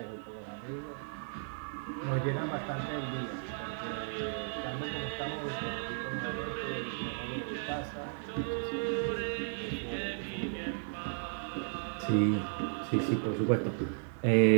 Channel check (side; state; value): left; silent; 55 dB below the other